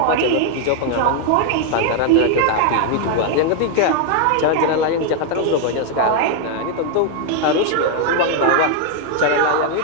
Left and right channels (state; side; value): different; both; correlation 0.00